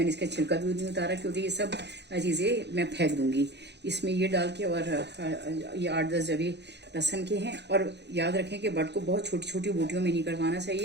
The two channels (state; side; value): late; left; 0.50 ms